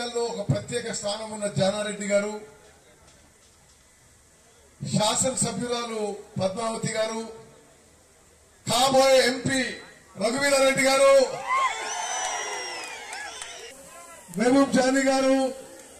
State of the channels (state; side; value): identical; both; correlation 1.00